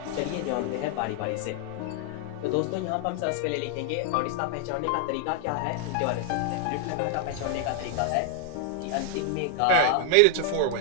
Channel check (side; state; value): both; different; correlation 0.00